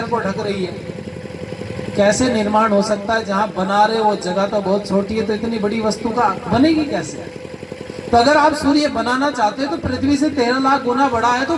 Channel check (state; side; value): identical; both; correlation 1.00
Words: को ढक रही है, कैसे निर्माण हो सकता है? जहां बना रहे वो जगह तो बहुत छोटी है, तो इतनी बड़ी वस्तु का बनेगी कैसे? तो अगर आप सूर्य बनाना चाहते हो तो पृथ्वी से 13 लाख गुना बड़ा है, तो